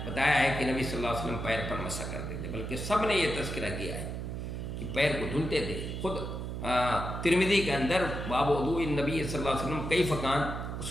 بتایا ہے کہ نبی صلی اللہ علیہ وسلم پیر پر مسح کرتے تھے، بلکہ سب نے یہ تذکرہ کیا ہے کہ پیر کو دھلتے تھے۔ خود ترمذی کے اندر باب وضوء النبی صلی اللہ علیہ وسلم کیف کان،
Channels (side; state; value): right; noise; hum, 5 dB below the sound